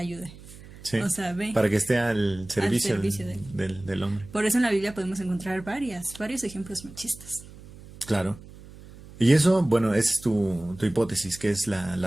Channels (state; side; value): noise; right; hum, 18 dB below the sound